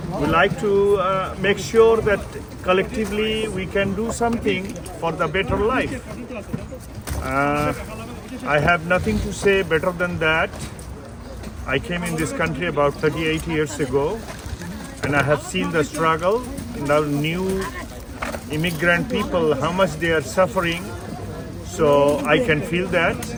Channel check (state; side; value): identical; both; correlation 1.00